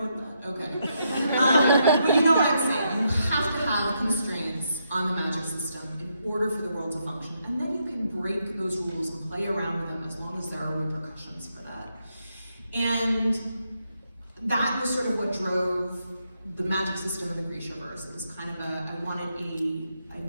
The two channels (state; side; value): inverted; both; correlation -0.79